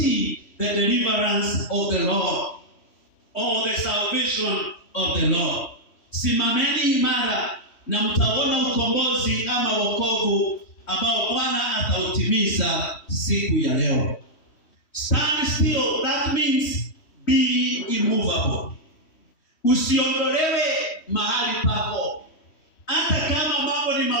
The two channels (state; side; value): late; right; 3.1 ms